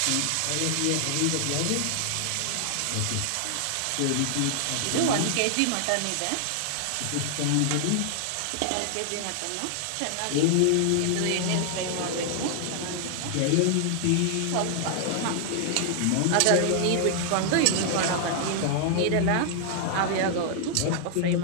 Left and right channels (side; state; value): both; different; correlation 0.00